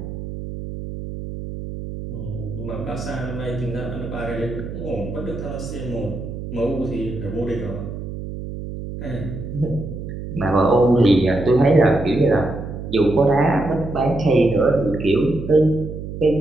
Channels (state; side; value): noise; right; hum, 8 dB below the sound